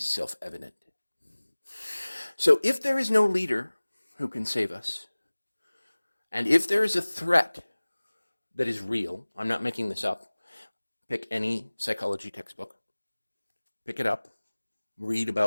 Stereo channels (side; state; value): both; inverted; correlation -1.00